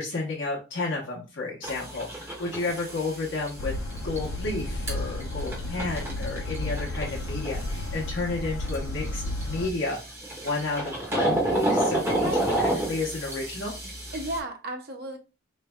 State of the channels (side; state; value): both; normal; correlation 0.41